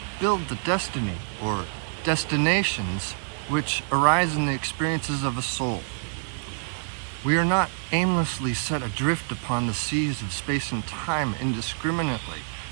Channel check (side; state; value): left; silent; digital silence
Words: build the destiny or destinations which arise in the experiences of a soul. We are not aimlessly set adrift upon the seas of space and time indiscriminately.